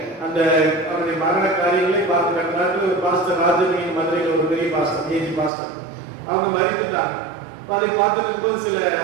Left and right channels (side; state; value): left; drops out; at 5.5 s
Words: அந்த அவருடைய மரண காரியங்களை பார்த்து ஒரு பாஸ்டர் ராஜமணி மதுரையில் ஒரு பெரிய பாஸ்டர் ஏஜி பாஸ்டர் அவங்க மறித்துட்டாங்க. அதை பார்த்துட்டு போது சில